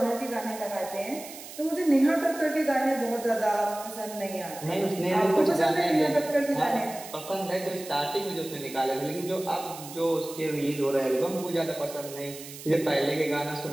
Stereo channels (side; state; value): right; noise; hiss, 14 dB below the sound